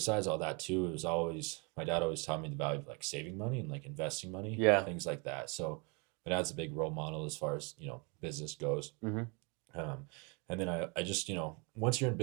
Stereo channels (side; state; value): left; quieter; 31.9 dB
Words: all that too, it was always my dad always taught me the value of like saving money and like investing money, things like that. So my dad's a big role model as far as business goes. And then I just once you're in